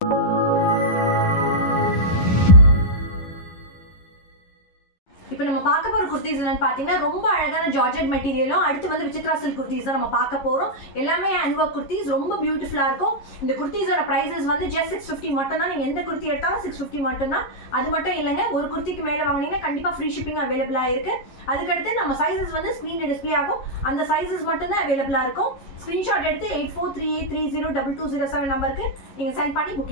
இப்போ நம்ம பார்க்க போற குர்தீஸ் என்னன்னு பாத்தீங்கன்னா ரொம்ப அழகான ஜார்ஜெட் மெட்டீரியலும் அடுத்து வந்து விசித்ரா சில்க் குர்தீஸ் தான் நம்ம பார்க்க போறோம். எல்லாமே ஹேண்ட் வொர்க் குர்தீஸ் ரொம்ப பியூட்டிஃபுல்லா இருக்கும். இந்த குர்தீஸோட பிரைசஸ் வந்து just 650 மட்டும் தான். நீங்க எந்த குர்த்தி எடுத்தாலும் 650 மட்டும் தான். அது மட்டும் இல்லங்க, ஒரு குர்த்திக்கு மேல வாங்குனீங்கன்னா கண்டிப்பா ஃப்ரீ ஷிப்பிங் அவைலபிளா இருக்கு. அதுக்கு அடுத்து நம்ம சைஸஸ் வந்து ஸ்கிரீன்ல டிஸ்ப்ளே ஆகும். அந்த சைஸஸ் மட்டும் தான் அவைலபிளா இருக்கும். ஸ்கிரீன்ஷாட் எடுத்து 8438302207 நம்பருக்கு நீங்க சென்ட் பண்ணி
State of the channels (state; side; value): late; right; 11 ms